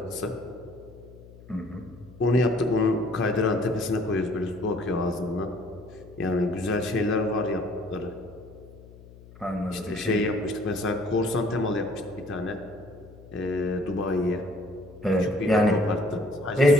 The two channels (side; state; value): left; noise; hum, 20 dB below the sound